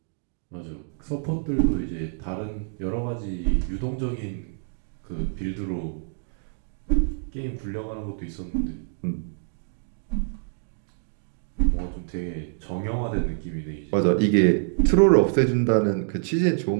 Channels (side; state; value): left; silent; digital silence